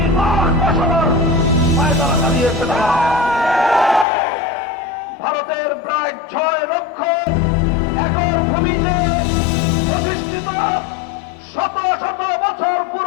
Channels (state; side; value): drops out; right; at 4.0 s